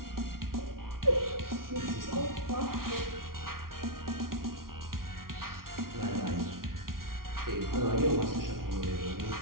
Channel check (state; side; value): late; left; 0.92 ms